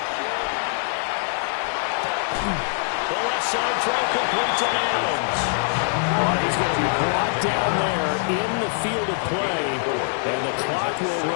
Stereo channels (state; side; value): silent; right; digital silence